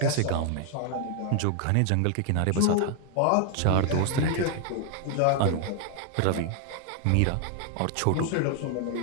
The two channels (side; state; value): both; different; correlation 0.00